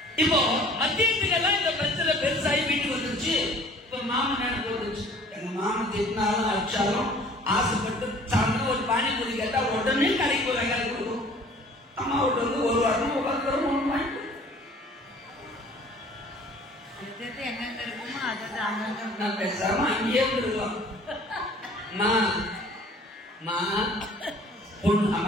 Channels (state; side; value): normal; both; correlation 0.51